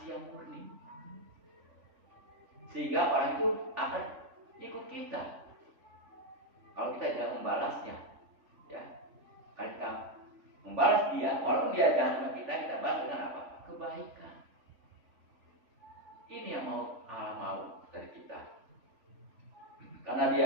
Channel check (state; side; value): late; left; 3.5 ms